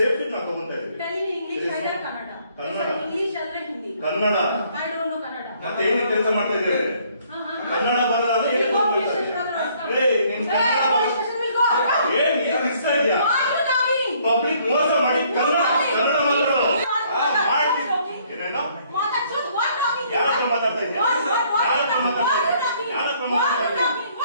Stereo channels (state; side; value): inverted; both; correlation -0.64